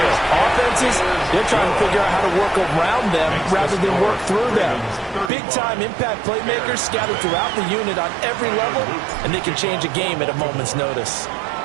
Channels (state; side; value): drops out; left; at 5.3 s